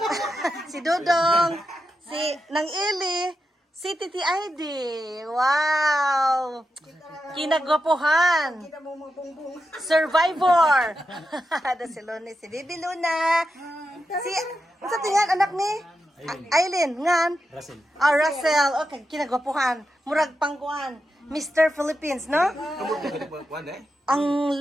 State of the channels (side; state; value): both; normal; correlation 0.88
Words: Si Dodong, si nang Eli, si Titi ID. Wow. Kinagwapuhan. Survivor. Ada si Luna, si Bibi Luna. Si unsa tingan anak ni Aileen ngan Russell. Okay, kinagwapuhan. Murag pangkuan. Mr. Philippines, no? Ang